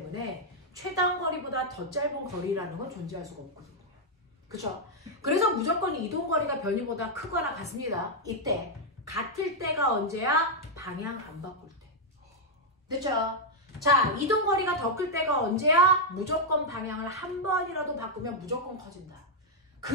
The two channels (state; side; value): normal; both; correlation -0.02